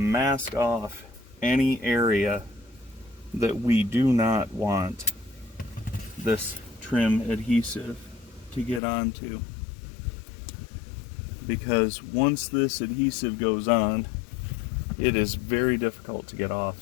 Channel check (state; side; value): drops out; right; at 8.8 s